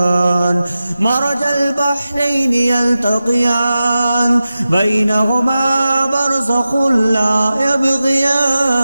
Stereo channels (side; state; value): both; inverted; correlation -0.93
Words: مرج البحرين يلتقيان بينهما برزخ لا يبغيان